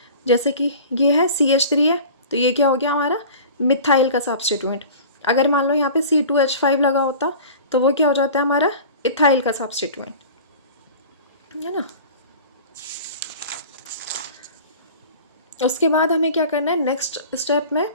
जैसे कि ये है CH3 है, तो ये क्या हो गया हमारा, मिथाइल का सब्स्टिट्यूएंट। अगर मान लो यहाँ पे C2H5 लगा होता, तो वो क्या हो जाता है हमारा, इथाइल का सब्स्टिट्यूएंट, है ना। उसके बाद हमें क्या करना है, नेक्स्ट स्टेप में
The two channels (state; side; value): inverted; both; correlation -0.40